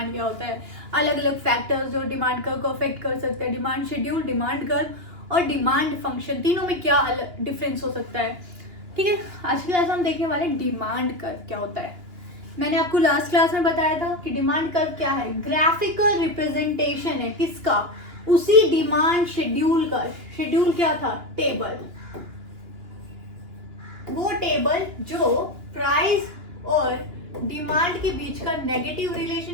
क्या होता है, अलग अलग फैक्टर्स जो डिमांड कर्व को अफेक्ट कर सकते हैं, डिमांड शेड्यूल, डिमांड कर्व और डिमांड फंक्शन, तीनों में क्या डिफरेंस हो सकता है। ठीक है, आज की क्लास में हम देखने वाले डिमांड कर्व क्या होता है। मैंने आपको लास्ट क्लास में बताया था कि डिमांड कर्व क्या है, ग्राफिकल रिप्रेजेंटेशन है किसका, उसी डिमांड शेड्यूल का। शेड्यूल क्या था, टेबल, वो टेबल जो प्राइस और डिमांड के बीच का नेगेटिव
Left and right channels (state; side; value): late; left; 2.9 ms